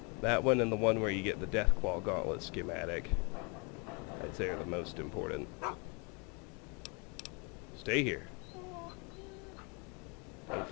That one and the one where you get the Deathclaw Gauntlet schematic, I'd say, are the most important. Stay here. Don't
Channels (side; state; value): right; quieter; 32.0 dB